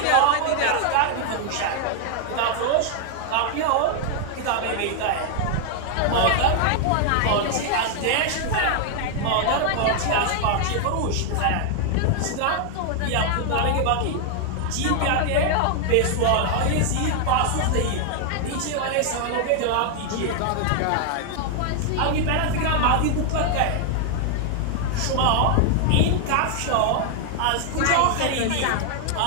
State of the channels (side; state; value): both; different; correlation 0.00